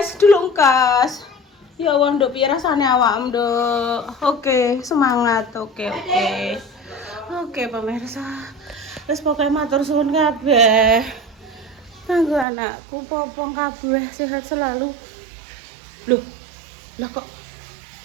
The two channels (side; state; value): left; drops out; at 12.5 s